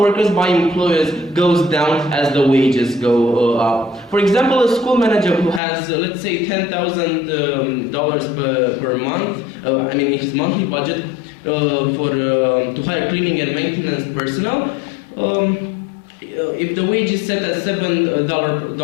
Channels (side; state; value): right; drops out; at 5.6 s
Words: by employers goes down as the wages go up. For example, a school manager who has, let's say, $10,000 per month, in his monthly budget to hire cleaning and maintenance personnel, if the wage is set at